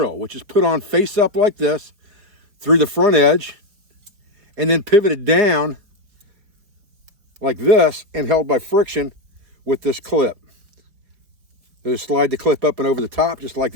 which is put on face up like this through the front edge and then pivoted down like this and held by friction with this clip. So just slide the clip up and over the top just like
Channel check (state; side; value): late; left; 5.0 ms